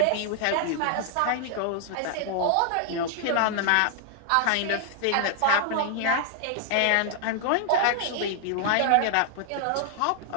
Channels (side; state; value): both; different; correlation 0.00